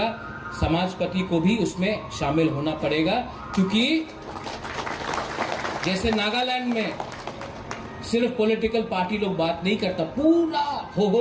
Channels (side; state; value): both; identical; correlation 1.00